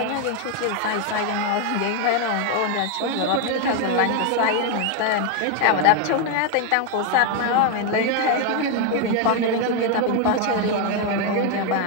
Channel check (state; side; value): different; both; correlation 0.01